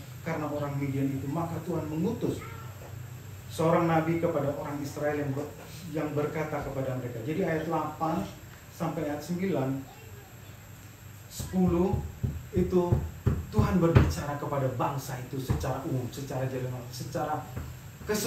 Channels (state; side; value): identical; both; correlation 1.00